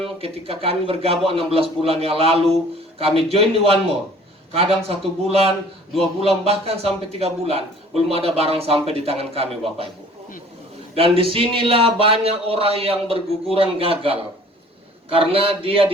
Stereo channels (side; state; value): both; normal; correlation 0.51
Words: ketika kami bergabung 16 bulan yang lalu, kami join di One More. Kadang 1 bulan, 2 bulan, bahkan sampai 3 bulan belum ada barang sampai di tangan kami Bapak Ibu. Dan disinilah banyak orang yang berguguran gagal karena dia